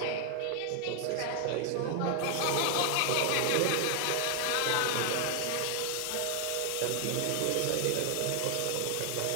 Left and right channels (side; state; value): both; different; correlation 0.00